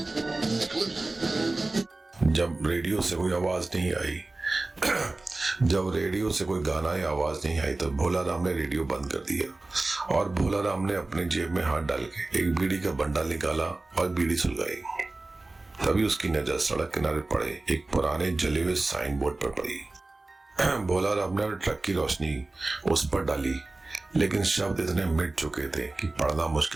जब रेडियो से कोई आवाज नहीं आई जब रेडियो से कोई गाना या आवाज नहीं आई तो भोला राम ने रेडियो बंद कर दिया और भोला राम ने अपने जेब में हाथ डाल के एक बीड़ी का बंडल निकाला और बीड़ी सुलगाई। तभी उसकी नजर सड़क किनारे पड़े एक पुराने जले हुए साइन बोर्ड पर पड़ी। भोला राम ने ट्रक की रोशनी उस पर डाली, लेकिन शब्द इतने मिट चुके थे कि पढ़ना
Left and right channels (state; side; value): quieter; left; 3.1 dB